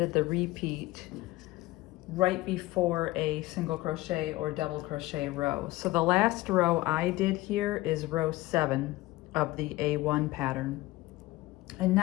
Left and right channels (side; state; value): right; quieter; 18.9 dB